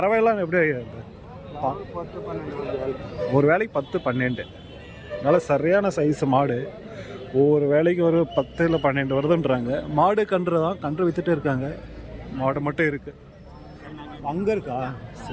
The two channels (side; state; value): both; identical; correlation 1.00